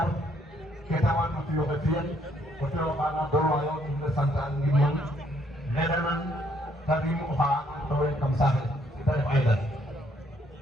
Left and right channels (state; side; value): normal; both; correlation 0.68